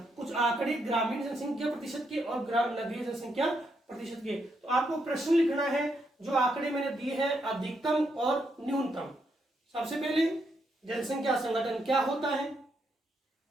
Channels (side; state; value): both; normal; correlation 0.79